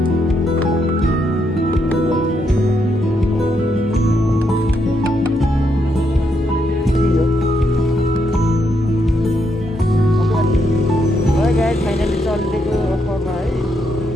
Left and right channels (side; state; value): both; normal; correlation 0.78